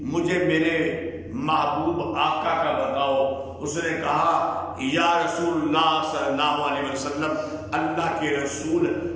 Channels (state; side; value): identical; both; correlation 1.00